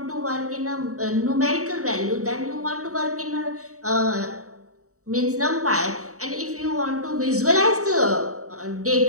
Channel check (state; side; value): late; left; 0.65 ms